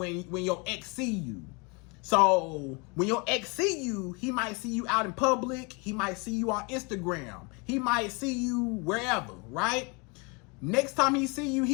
your ex see you. So when your ex see you, he might see you out in public. He might see you on Instagram. He might see you wherever, right? Next time he see you,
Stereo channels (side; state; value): right; quieter; 30.4 dB